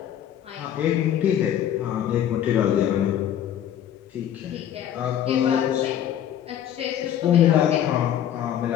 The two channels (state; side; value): quieter; right; 10.5 dB